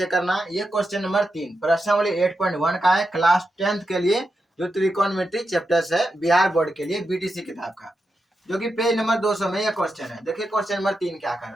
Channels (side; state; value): both; normal; correlation 0.87